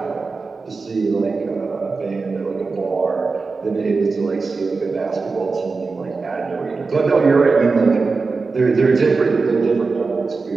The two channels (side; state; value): left; quieter; 4.2 dB